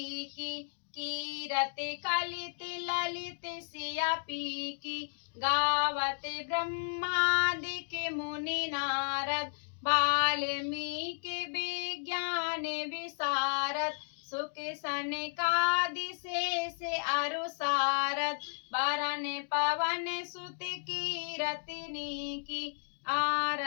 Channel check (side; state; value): right; silent; digital silence